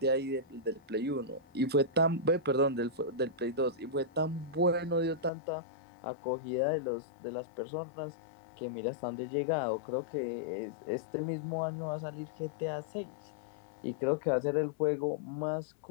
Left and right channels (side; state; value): right; drops out; at 5.3 s